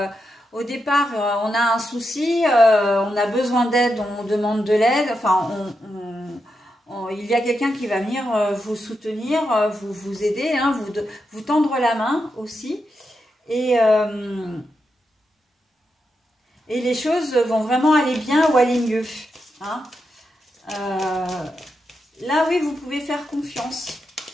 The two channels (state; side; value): normal; both; correlation 0.85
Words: au départ, on a un souci, on a besoin d'aide, on demande de l'aide. Enfin, il y a quelqu'un qui va venir vous soutenir, vous aider, hein, vous tendre la main aussi. Et les choses vont vraiment aller bien ou aller mieux. Hein. Là, oui, vous pouvez faire confiance.